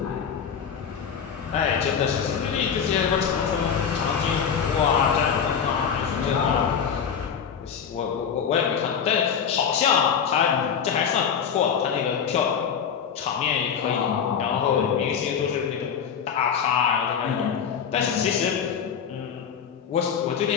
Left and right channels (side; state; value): right; quieter; 7.4 dB